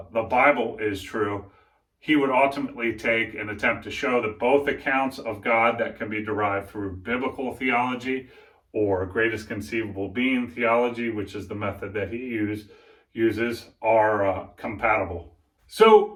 Bible is true. He would ultimately take and attempt to show that both accounts of God that can be derived through biblical theology or greatest conceivable being theology, which is the method that he uses, are compatible. So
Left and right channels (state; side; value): identical; both; correlation 1.00